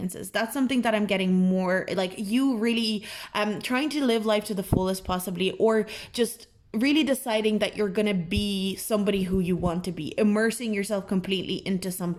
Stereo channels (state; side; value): identical; both; correlation 1.00